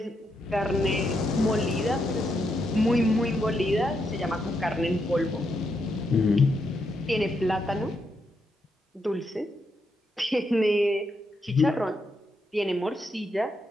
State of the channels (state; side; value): normal; both; correlation 0.81